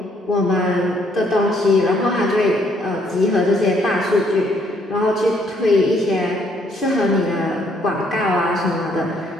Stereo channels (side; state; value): both; normal; correlation 0.68